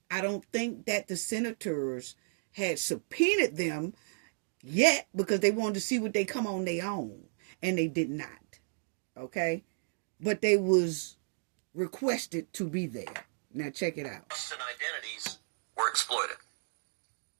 I don't think that the senators had subpoenaed them yet because they wanted to see what they come on their own. And they did not. Okay? But they was requested to be there. Now check it out. And identities were exploited.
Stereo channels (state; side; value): silent; left; digital silence